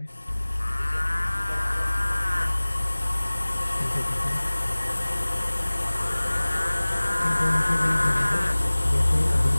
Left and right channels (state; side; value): inverted; both; correlation -1.00